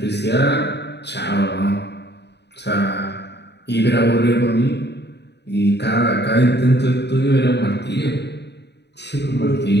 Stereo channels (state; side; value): late; right; 0.50 ms